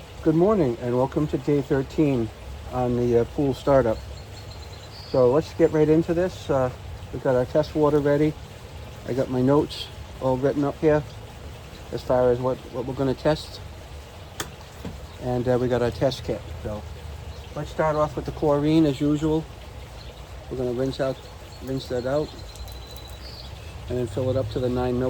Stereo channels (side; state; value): both; identical; correlation 1.00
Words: Good morning and welcome to day 13 on the pool startup. So let's get right into this. We got our test water ready. I got my notes all written up here as far as what we're going to test. And we got our test kit. So let's start off with the chlorine as usual. We're going to rinse that out and then fill it up to the 9